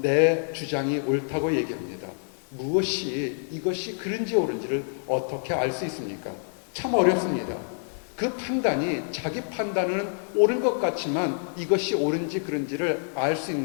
주장이 옳다고 얘기합니다. 무엇이 이것이 그른지 옳은지를 어떻게 알 수 있습니까? 참 어렵습니다. 그 판단이 자기 판단은 옳은 것 같지만 이것이 옳은지 그른지를 알 수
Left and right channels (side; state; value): right; silent; 60 dB below the other